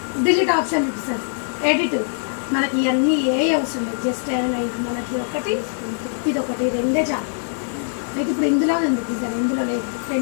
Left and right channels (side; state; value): right; silent; 64 dB below the other